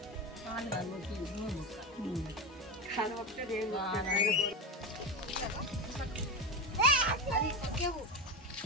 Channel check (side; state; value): both; normal; correlation 0.19